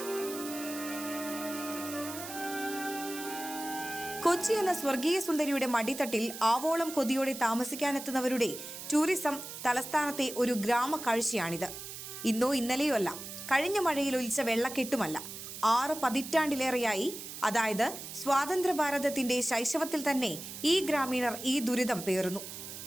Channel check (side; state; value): right; noise; hiss, 10 dB below the sound